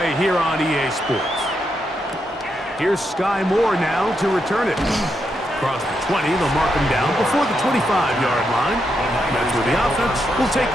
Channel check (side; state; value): both; normal; correlation 0.82